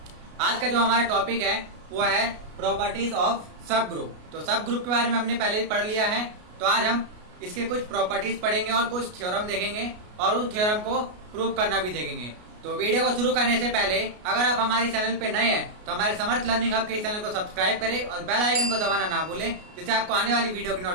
आज का जो हमारा टॉपिक है वो है प्रॉपर्टीज ऑफ सब ग्रुप। तो सब ग्रुप के बारे में हमने पहले ही पढ़ लिया है, तो आज हम इसके कुछ प्रॉपर्टीज पढ़ेंगे और कुछ थ्योरम देखेंगे और उस थ्योरम को प्रूव करना भी देखेंगे। तो वीडियो को शुरू करने से पहले अगर आप हमारे चैनल पे नए हैं तो हमारे समर्थ लर्निंग हब के इस चैनल को सब्सक्राइब करें और बेल आइकन को दबाना ना भूलें, जिससे आपको आने वाली वीडियो की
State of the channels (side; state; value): left; late; 33 ms